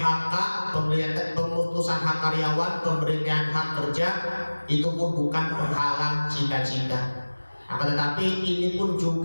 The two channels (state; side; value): inverted; both; correlation -1.00